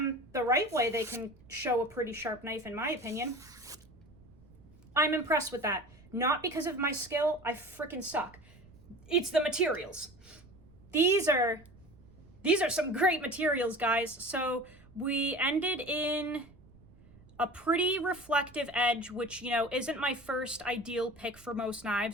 the right way, they can show a pretty sharp knife, in my opinion. I'm impressed with that. Not because of my skill, I freaking suck. It's the materials. These are some great materials, guys. So we ended in a pretty reflective edge, which, you know, isn't my first ideal pick for most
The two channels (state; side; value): noise; right; rumble, 24 dB below the sound